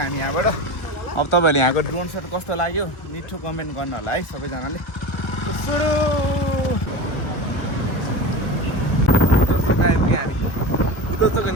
हामी यहाँबाट अब तपाईँहरूले यहाँको ड्रोन सट कस्तो लाग्यो मिठो कमेन्ट गर्नु होला है सबैजनाले सुरु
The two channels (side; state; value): right; late; 1.1 ms